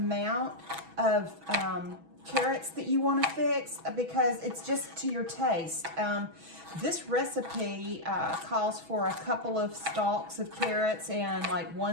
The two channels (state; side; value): late; left; 6.2 ms